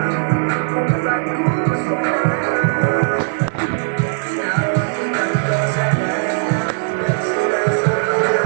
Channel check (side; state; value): left; silent; digital silence